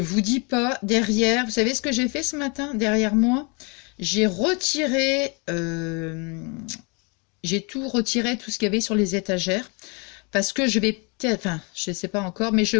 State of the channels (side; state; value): right; quieter; 32.4 dB